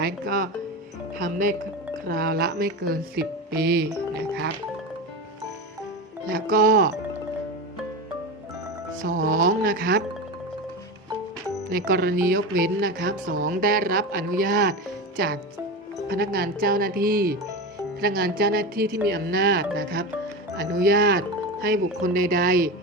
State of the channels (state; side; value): normal; both; correlation 0.22